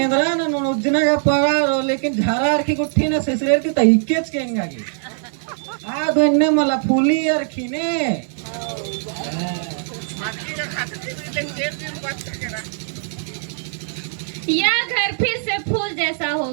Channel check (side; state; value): left; silent; 61 dB below the other